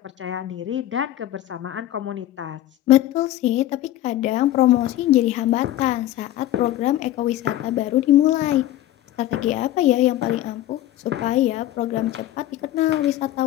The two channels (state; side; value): quieter; right; 13.9 dB